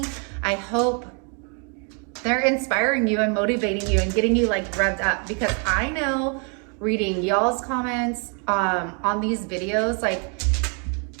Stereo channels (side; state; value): left; quieter; 38.0 dB